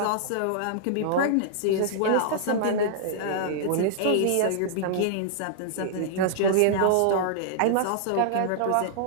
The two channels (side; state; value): both; different; correlation -0.02